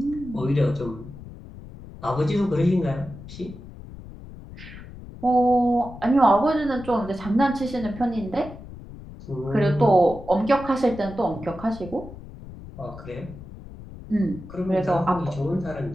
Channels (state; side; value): noise; left; rumble, 15 dB below the sound